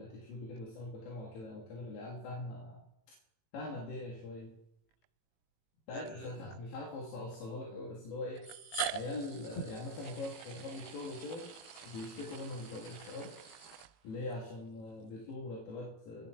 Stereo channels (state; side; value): late; right; 18 ms